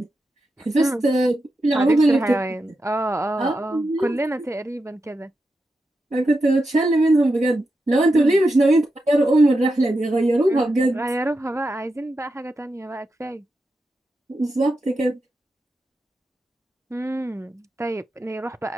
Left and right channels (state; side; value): normal; both; correlation 0.88